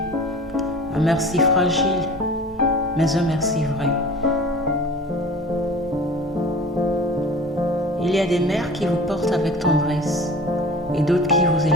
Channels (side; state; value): both; normal; correlation 0.40